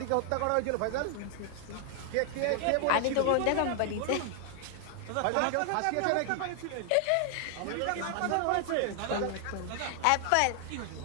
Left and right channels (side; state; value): both; different; correlation 0.00